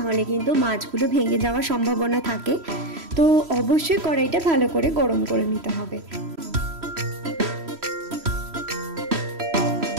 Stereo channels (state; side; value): late; left; 3.1 ms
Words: হলে কিন্তু মাছগুলো ভেঙে যাওয়ার সম্ভাবনা থাকে। তো অবশ্যই কড়াইটা ভালো করে গরম করে নিতে হবে।